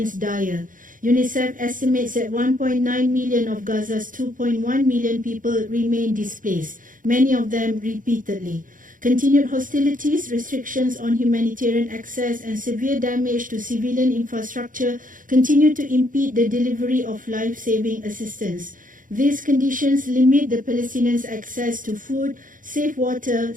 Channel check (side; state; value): left; late; 0.39 ms